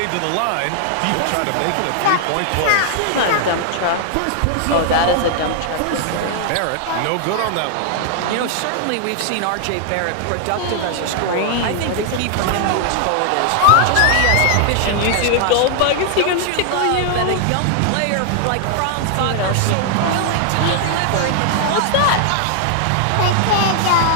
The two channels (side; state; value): both; different; correlation 0.00